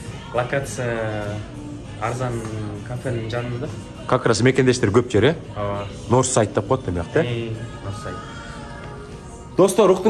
Локация арзан кафенин жанында. Как раз мекендештер көп жер, Ооба. Норсайд деп коет демек, Норсайд. Достор,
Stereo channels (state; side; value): identical; both; correlation 1.00